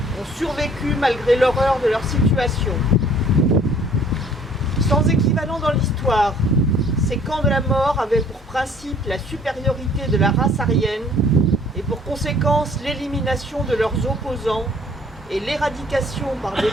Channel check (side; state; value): both; normal; correlation 0.56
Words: ont survécu malgré l'horreur de leur situation. Sans équivalent dans l'histoire, ces camps de la mort avaient pour principe la supériorité de la race aryenne et pour conséquence l'élimination de leurs opposants et l'éradication par des